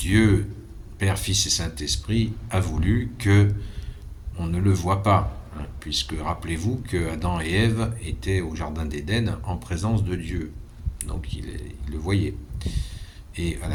Père, Fils et Saint-Esprit, a voulu que on ne le voit pas. Puisque rappelez-vous que Adam et Ève étaient au jardin d'Éden en présence de Dieu, donc ils le voyaient. Et à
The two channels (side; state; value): both; identical; correlation 1.00